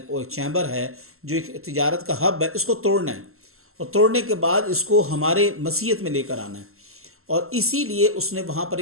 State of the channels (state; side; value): late; left; 0.62 ms